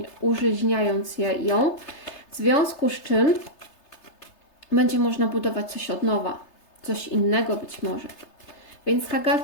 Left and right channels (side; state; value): right; late; 3.3 ms